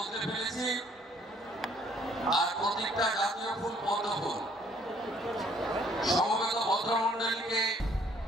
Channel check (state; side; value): normal; both; correlation 0.62